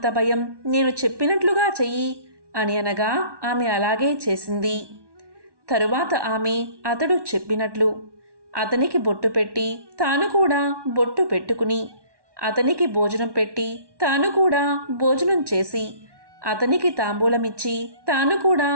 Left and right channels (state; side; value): late; left; 1.2 ms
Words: భయం, నేను చెప్పినట్లుగా చెయ్యి అని అనగా ఆమె అలాగే చేసింది. తరువాత ఆమె అతడు చెప్పినట్లు అతనికి బొట్టు పెట్టి తాను కూడా బొట్టు పెట్టుకుని అతనికి భోజనం పెట్టి తాను కూడా భోజనం చేసి అతనికి తాంబూలమిచ్చి తాను కూడా